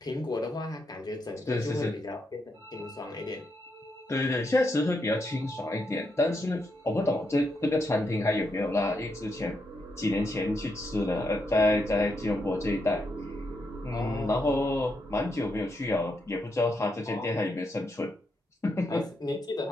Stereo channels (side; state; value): both; normal; correlation 0.81